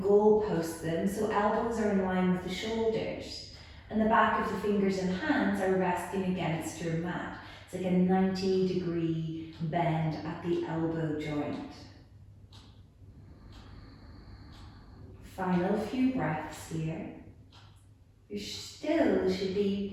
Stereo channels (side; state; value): both; identical; correlation 1.00